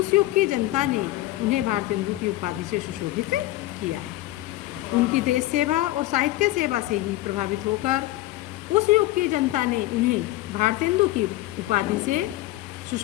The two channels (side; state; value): right; quieter; 17.0 dB